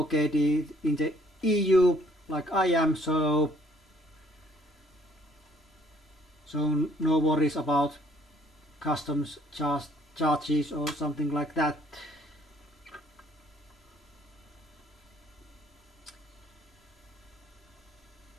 in the EU like I am, so no worries about customs charges or something like that.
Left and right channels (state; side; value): normal; both; correlation 0.62